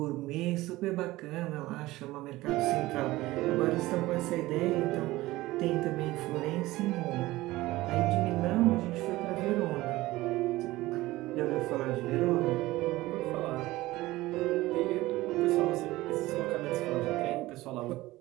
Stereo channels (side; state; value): left; quieter; 18.3 dB